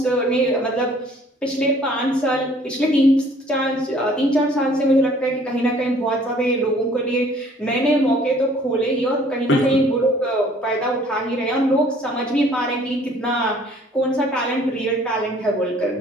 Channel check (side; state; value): both; normal; correlation 0.56